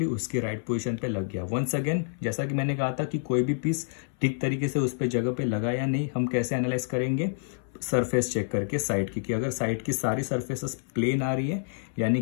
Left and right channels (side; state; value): right; silent; 59 dB below the other